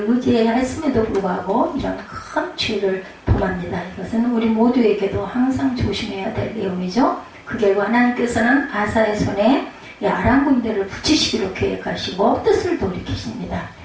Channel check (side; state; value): both; identical; correlation 1.00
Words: 의지해야 했음에도 불구하고 이런 큰 죄를 범합니다. 이것은 우리 모두에게도 항상 조심해야 될 내용이죠. 그 결과 하나님께서는 아사의 손에 아람 군대를 붙이시기로 계획하시고 뜻을 돌이키십니다.